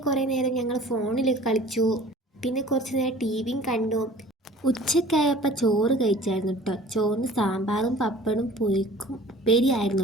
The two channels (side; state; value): both; normal; correlation 0.47